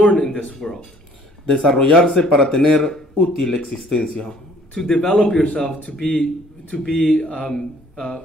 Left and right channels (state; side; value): normal; both; correlation 0.57